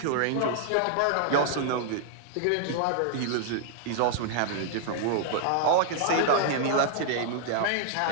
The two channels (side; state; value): both; different; correlation 0.00